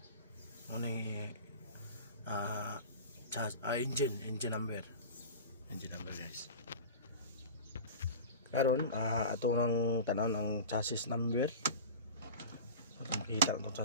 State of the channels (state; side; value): inverted; both; correlation -0.32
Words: Ano engine number guys. Karon ato nang tanan ang chassis number. Atong kita ang